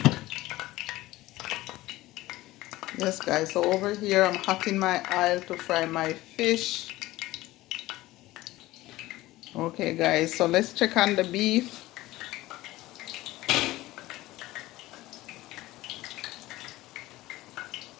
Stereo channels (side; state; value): right; quieter; 17.6 dB